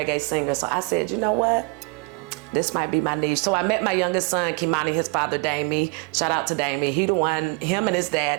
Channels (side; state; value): left; quieter; 29.6 dB